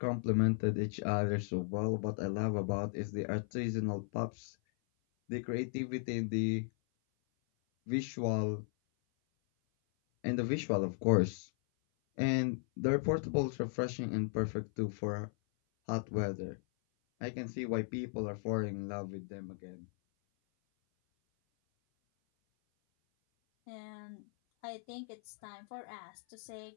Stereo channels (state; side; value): silent; right; 53 dB below the other